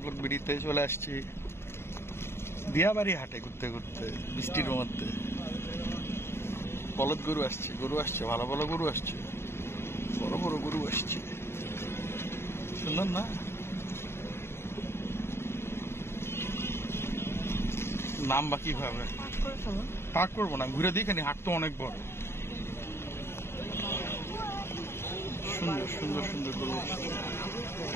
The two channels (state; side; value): late; right; 0.12 ms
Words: ব্লগ ভিডিওতে চলে আসছি দিয়াবাড়ি হাটে ঘুরতে ঘুরতে বৃষ্টির মধ্যে। বলদ গরু আসছে, ভালো ভালো গরু আসছে, বড় বড় গরু আসছে, সুন্দর না? নাম বা কিভাবে পাক করবো না, ঘুরে দেখেনি, হাট তো অনেক বড়। সুন্দর সুন্দর সুন্দর গরু আসছে।